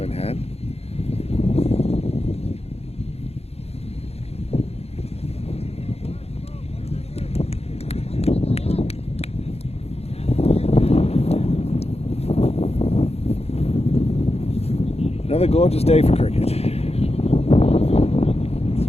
in hand. Another gorgeous day for cricket.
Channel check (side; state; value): right; late; 0.30 ms